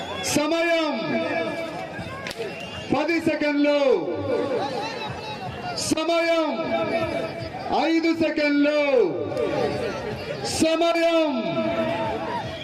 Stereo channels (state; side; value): identical; both; correlation 1.00